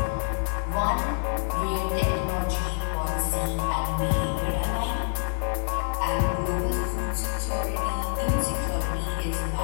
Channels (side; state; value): right; silent; 59 dB below the other